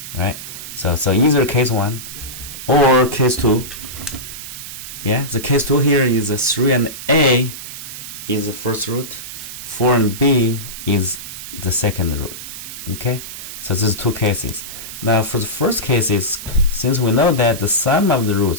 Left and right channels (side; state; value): right; noise; hiss, 10 dB below the sound